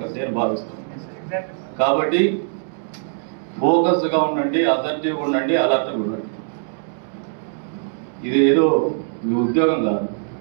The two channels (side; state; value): left; silent; digital silence